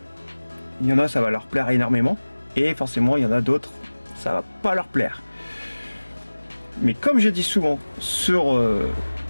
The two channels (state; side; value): inverted; both; correlation -1.00